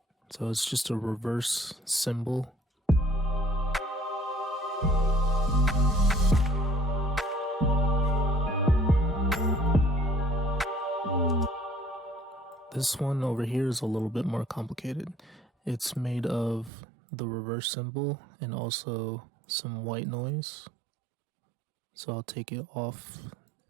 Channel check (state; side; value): drops out; left; at 16.7 s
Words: So it's just a reverse cymbal. This one over here is a little bit more complicated. It's made of the reverse cymbal and also some white noise. So I'll take it off